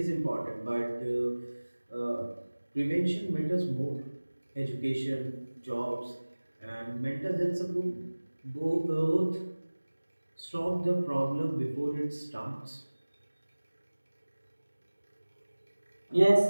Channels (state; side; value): inverted; both; correlation -1.00